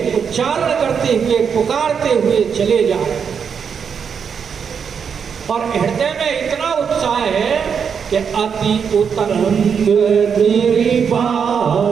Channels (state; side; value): quieter; left; 6.8 dB